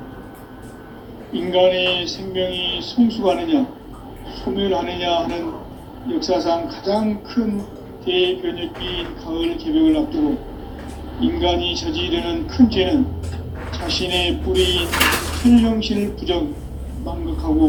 인간의 생명이 성숙하느냐, 소멸하느냐 하는 역사상 가장 큰 대변혁기인 가을 개벽을 앞두고 인간이 저지르는 큰 죄는 자신의 뿌리인 현령신을 부정,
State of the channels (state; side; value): identical; both; correlation 1.00